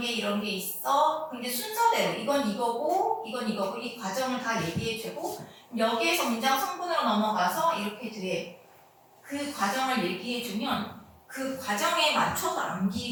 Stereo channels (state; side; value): identical; both; correlation 1.00